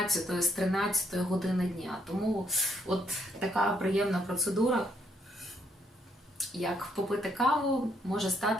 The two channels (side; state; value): both; normal; correlation 0.72